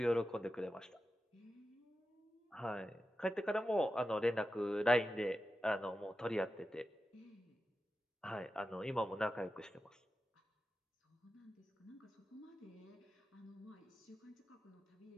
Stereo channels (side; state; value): both; normal; correlation 0.92